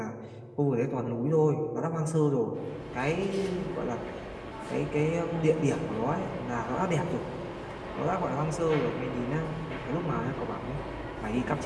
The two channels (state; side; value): identical; both; correlation 1.00